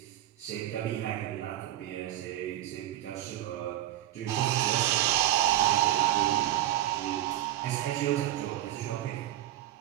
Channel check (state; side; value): quieter; left; 13.8 dB